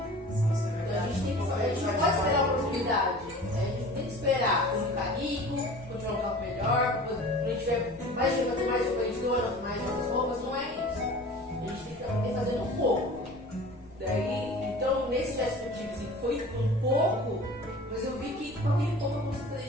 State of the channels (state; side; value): normal; both; correlation 0.41